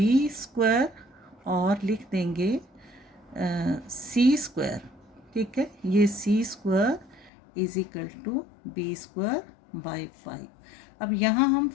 स्क्वायर और लिख देंगे c स्क्वायर, ठीक है। ये c square is equal to B square by 5। अब यहाँ हम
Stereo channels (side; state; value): right; drops out; at 7.3 s